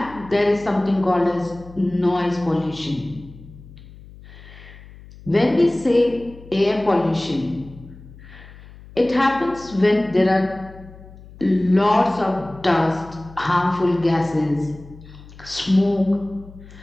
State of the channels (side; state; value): left; noise; hum, 19 dB below the sound